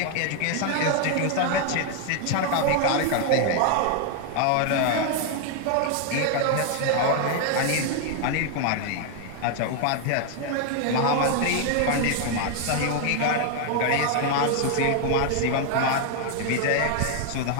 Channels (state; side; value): different; both; correlation 0.00